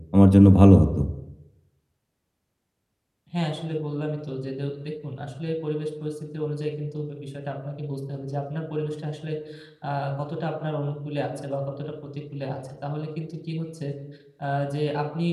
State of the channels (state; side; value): identical; both; correlation 1.00